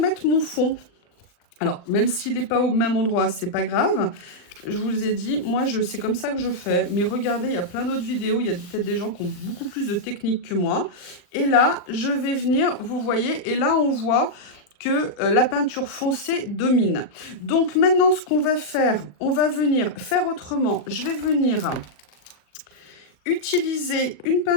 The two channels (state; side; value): late; right; 39 ms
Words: mon fond. Alors, même s'il n'est pas au même endroit, c'est pas grave. Je vous ai dit, moi, c'est comme ça que je fais. Mais regardez, il y a plein d'autres vidéos. Il y a peut-être des gens qui ont beaucoup plus de technique que moi. Et là, je vais venir, vous voyez, et là, on voit que la peinture foncée domine. Donc, maintenant, ce qu'on va faire, on va venir faire autrement. Je vais venir utiliser une